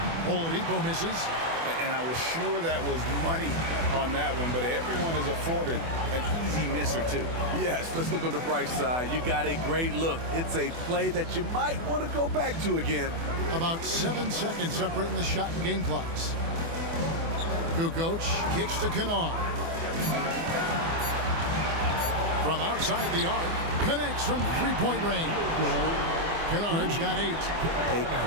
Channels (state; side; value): late; left; 24 ms